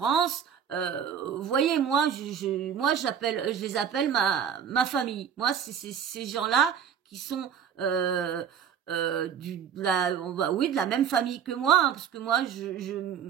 Vous voyez, moi, je les appelle ma famille. Moi, c'est ces gens-là qui sont de la même famille que moi, hein, parce que moi je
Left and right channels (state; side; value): quieter; left; 8.1 dB